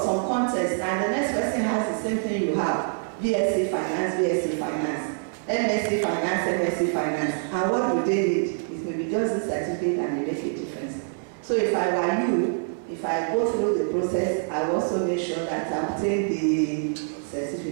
some contest and the next person has the same thing you have. BSc Finance, BSc Finance, MSc Finance, MSc Finance. And what do they need? It may be just the certificate and it make a difference. So if I were you, if I go through the process, I also make sure that I obtain the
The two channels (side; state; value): left; silent; 61 dB below the other